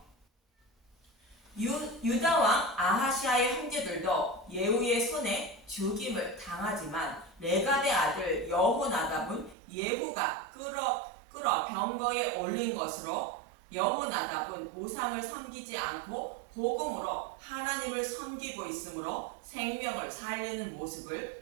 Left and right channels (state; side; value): drops out; left; at 9.6 s